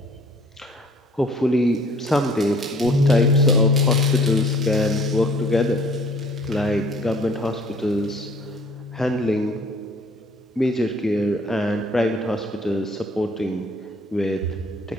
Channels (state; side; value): normal; both; correlation 0.54